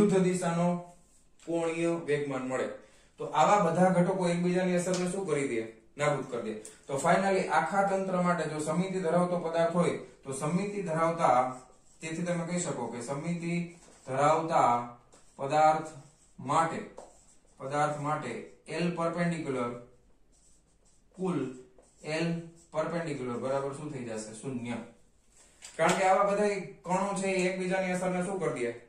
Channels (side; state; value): both; identical; correlation 1.00